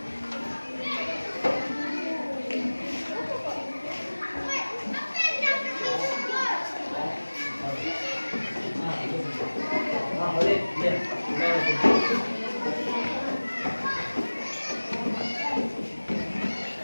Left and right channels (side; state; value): both; inverted; correlation -1.00